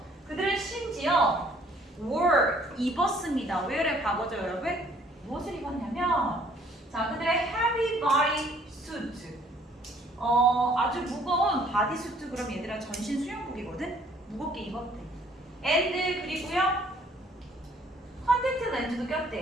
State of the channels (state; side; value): normal; both; correlation 0.60